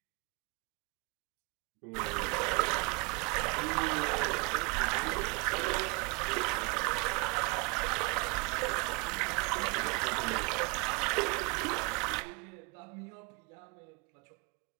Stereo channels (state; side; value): quieter; left; 29.7 dB